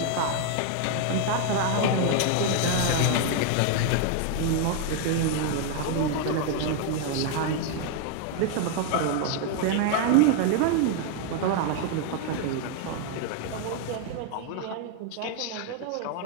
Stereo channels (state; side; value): different; both; correlation 0.00